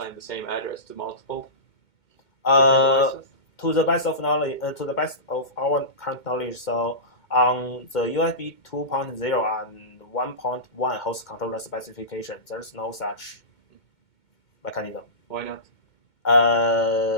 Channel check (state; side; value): late; right; 2.2 ms